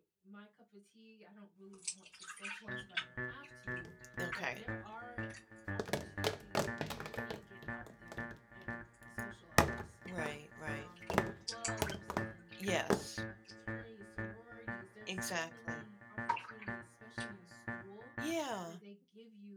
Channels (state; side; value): identical; both; correlation 1.00